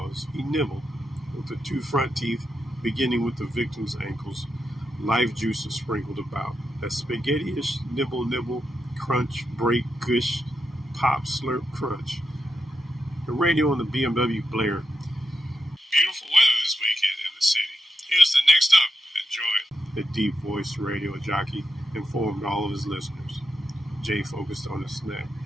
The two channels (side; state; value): both; normal; correlation 0.85